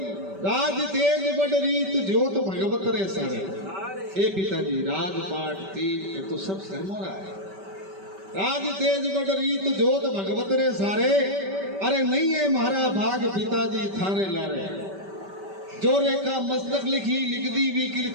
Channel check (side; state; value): left; late; 5.2 ms